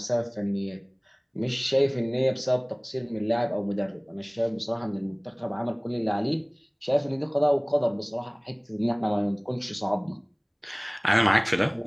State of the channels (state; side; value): identical; both; correlation 1.00